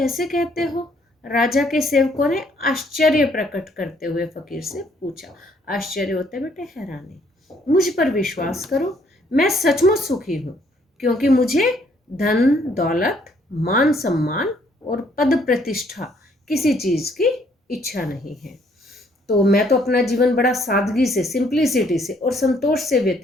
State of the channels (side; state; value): both; normal; correlation 0.66